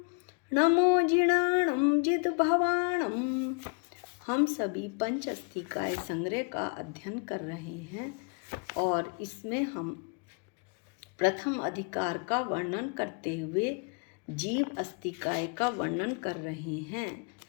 नमो जिणाणं जिद भवाणं। हम सभी पंच अस्तिकाय संग्रह का अध्ययन कर रहे हैं और इसमें हम प्रथम अधिकार का वर्णन करते हुए जीव अस्तिकाय का वर्णन कर रहे हैं।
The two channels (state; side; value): quieter; right; 36.8 dB